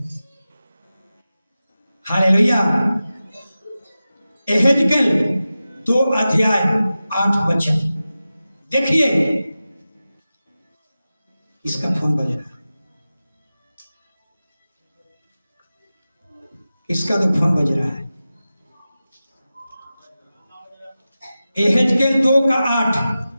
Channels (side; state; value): both; inverted; correlation -0.94